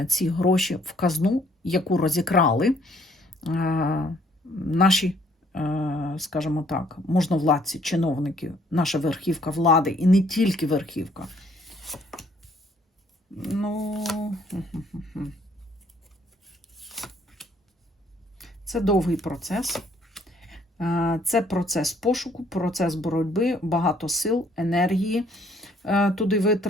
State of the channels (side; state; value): both; normal; correlation 0.63